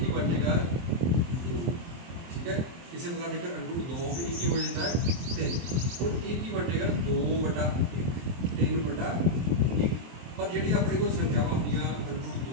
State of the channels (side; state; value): left; late; 23 ms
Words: बनेगा 2, ठीक है। इसी प्रकार देखकर √2 भी एक ही हो जाता है 3, और एक ही बनेगा 2/1 3/1। पर जी अपने को संख्यावां होंगे